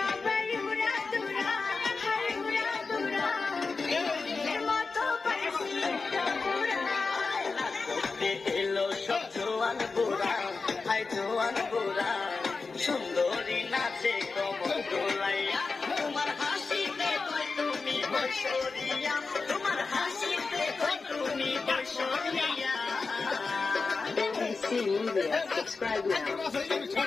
উড়া দুরা, হায় উড়া দুরা, এর মতো পাইছি একটা বুড়া। করতে এলো সব জোয়ান বুড়া, হাই জোয়ান বুড়া, সুন্দরী নাচে কমর দোলাইয়া, তোমার হাসিতে কই তুমি বৈশরিয়া, তোমার হাসিতে কই তুমি বৈশরিয়া। NBC Media, subscribe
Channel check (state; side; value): quieter; right; 4.3 dB